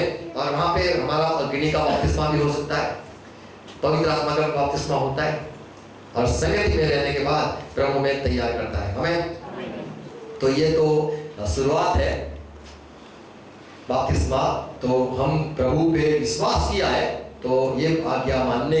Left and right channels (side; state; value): both; identical; correlation 1.00